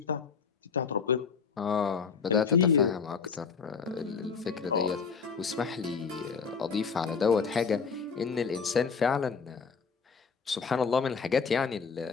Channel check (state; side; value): quieter; right; 5.7 dB